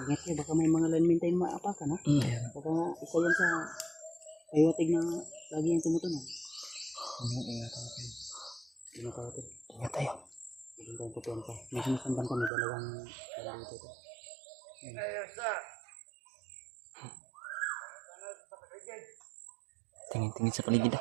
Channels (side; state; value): left; drops out; at 12.5 s